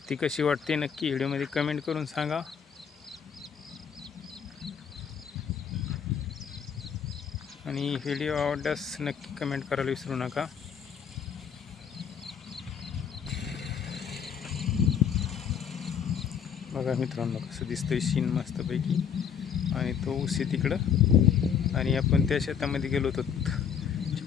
कशी वाटते नक्की व्हिडिओमध्ये कमेंट करून सांगा. आणि व्हिडिओ आवडल्यास नक्की कमेंट करायला विसरू नका. बघा मित्रांनो कसं दिसतंय सीन मस्तपैकी. आणि तो ऊस आहे तिकडं आणि आपण त्या शेतामध्ये गेलो होतो.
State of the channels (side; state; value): right; quieter; 7.6 dB